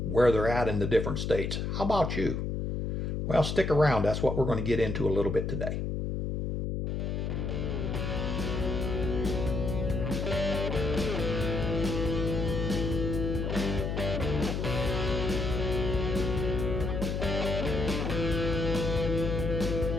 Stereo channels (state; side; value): noise; left; hum, 1 dB below the sound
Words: where they're at in the different states. How about you? Well, stick around. That's what we're going to get into a little bit today.